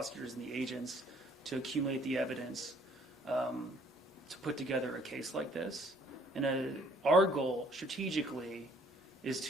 and the agents to accumulate the evidence to put together a case like this. And our goal strategically is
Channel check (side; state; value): both; normal; correlation 0.60